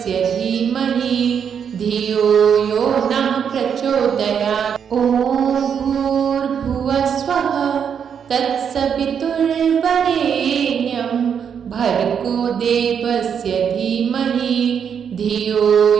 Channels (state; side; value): quieter; left; 7.5 dB